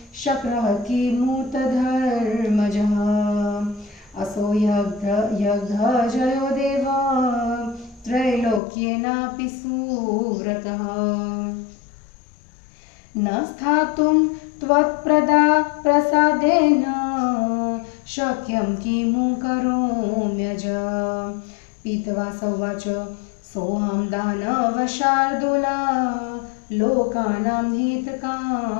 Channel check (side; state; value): right; drops out; at 8.6 s